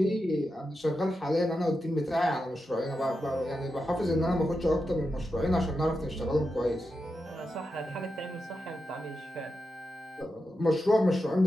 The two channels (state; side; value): normal; both; correlation 0.88